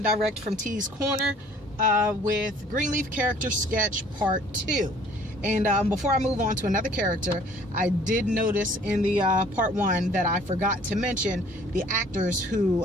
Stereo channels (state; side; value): normal; both; correlation 0.55